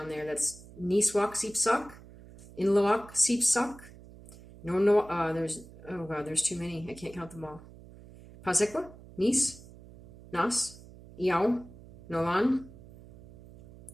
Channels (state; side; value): noise; right; hum, 19 dB below the sound